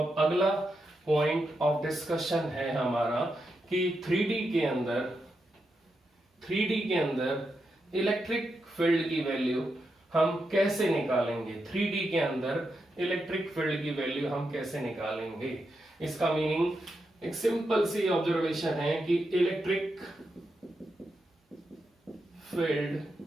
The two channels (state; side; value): normal; both; correlation 0.85